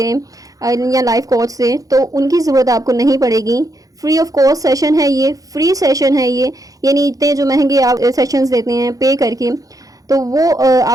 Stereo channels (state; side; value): late; left; 0.17 ms